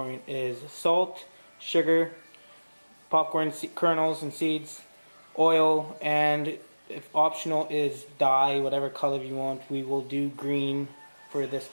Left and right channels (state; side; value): inverted; both; correlation -1.00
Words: is salt, sugar, popcorn kernels and seeds, oil, and if optional is dye, whatever color you want. We will do green for this